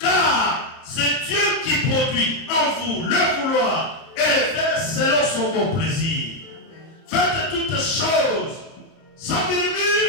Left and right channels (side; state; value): right; late; 30 ms